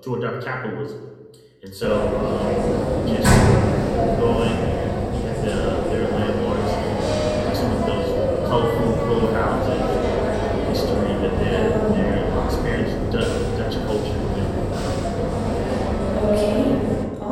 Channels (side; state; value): both; identical; correlation 1.00